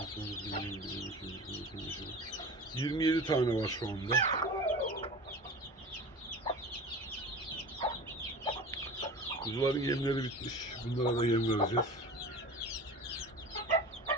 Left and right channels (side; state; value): both; normal; correlation 0.35